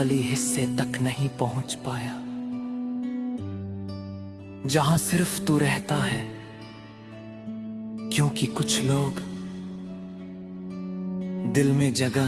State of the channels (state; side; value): identical; both; correlation 1.00